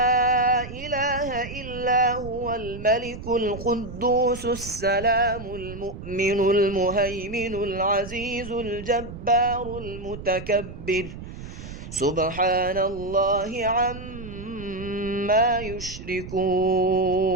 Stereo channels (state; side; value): noise; right; rumble, 11 dB below the sound